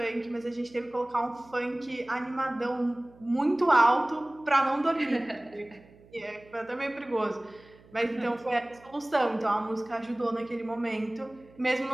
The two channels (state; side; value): noise; right; hum, 25 dB below the sound